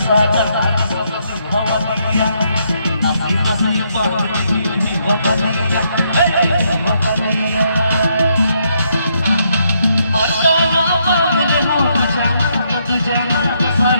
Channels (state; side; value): inverted; both; correlation -0.75